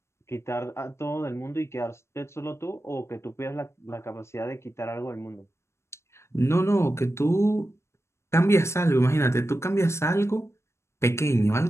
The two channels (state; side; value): late; right; 0.13 ms